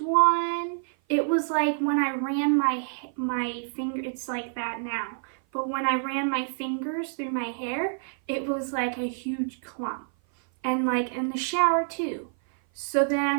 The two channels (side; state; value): left; silent; 56 dB below the other